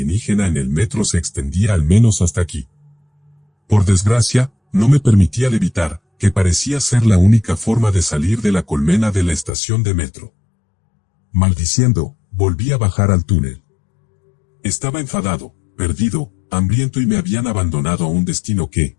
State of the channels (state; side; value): drops out; right; at 9.5 s